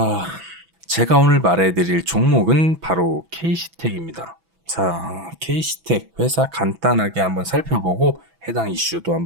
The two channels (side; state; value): left; late; 6.0 ms